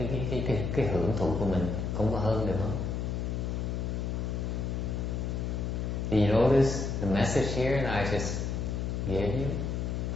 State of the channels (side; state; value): left; noise; hum, 1 dB below the sound